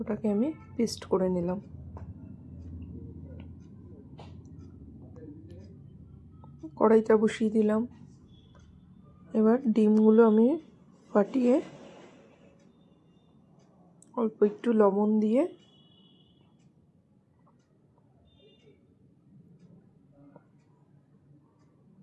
আমি পেস্ট করে নিলাম। কড়াইটা বসিয়ে দিলাম। এবার ডিমগুলো আমি ফাটিয়ে অল্প একটু লবণ দিয়ে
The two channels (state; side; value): identical; both; correlation 1.00